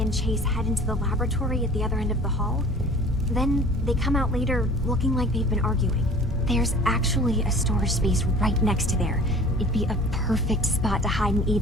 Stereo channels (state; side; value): normal; both; correlation 0.45